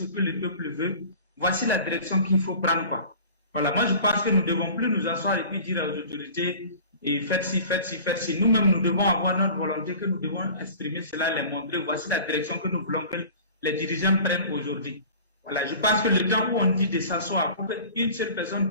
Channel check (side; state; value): both; inverted; correlation -0.42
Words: que le peuple veut, voici la direction qu'il faut prendre. Voilà, moi je pense que nous ne devons plus nous asseoir et puis dire aux autorités, et faites ci, faites ci, faites ci. Nous-mêmes, nous devons avoir notre volonté, que nous devons exprimer cela, les montrer. Voici la direction que nous voulons que les dirigeants prennent aujourd'hui. Voilà, je pense que le temps où on dit de s'asseoir pour qu'une seule personne